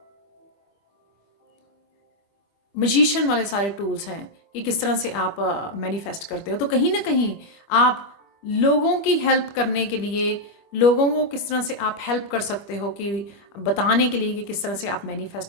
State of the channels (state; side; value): late; right; 25 ms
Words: मजिशियन वाले सारे टूल्स हैं कि किस तरह से आप मैनिफेस्ट करते हो। तो कहीं ना कहीं आप लोगों की हेल्प करने के लिए, लोगों को किस तरह से आप हेल्प कर सकते हो कि बताने के लिए कि किस तरह से आप